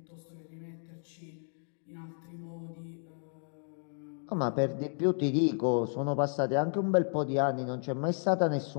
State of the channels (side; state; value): right; silent; 56 dB below the other